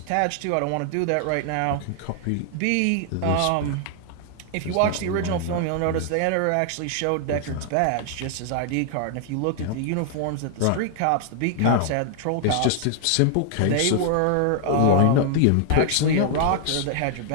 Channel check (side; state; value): both; different; correlation 0.00